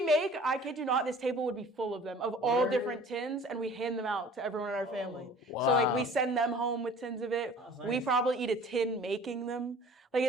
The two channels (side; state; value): both; normal; correlation 0.48